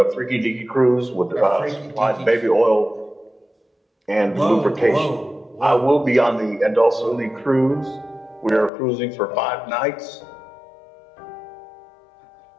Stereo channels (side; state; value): right; drops out; at 8.7 s